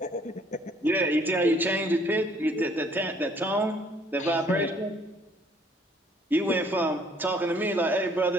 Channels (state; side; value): normal; both; correlation 0.61